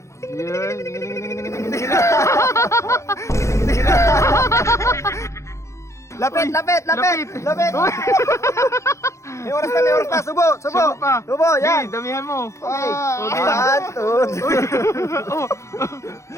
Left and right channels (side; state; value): right; late; 0.14 ms